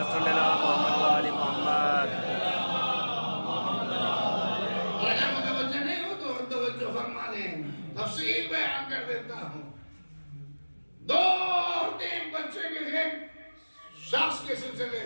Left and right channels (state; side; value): inverted; both; correlation -1.00